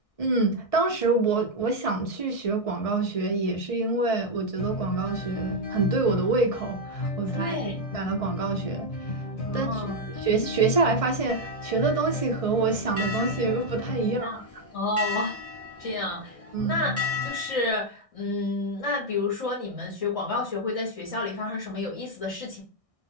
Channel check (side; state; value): right; late; 1.6 ms